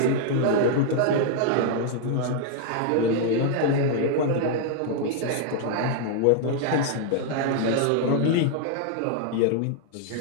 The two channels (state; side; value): different; both; correlation 0.00